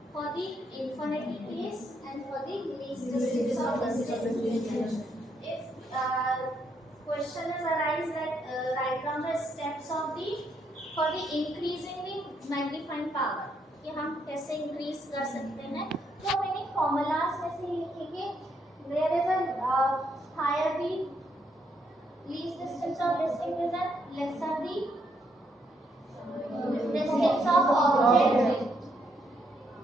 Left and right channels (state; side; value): normal; both; correlation 0.75